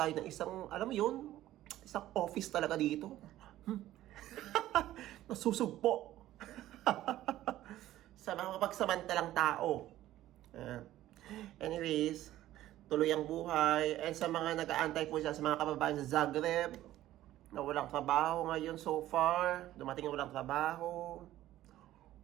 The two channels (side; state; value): left; quieter; 14.2 dB